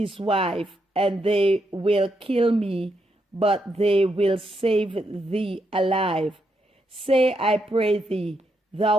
wife, and they will kill me, but they will save thee alive. Say, I pray thee,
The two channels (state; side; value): normal; both; correlation 0.80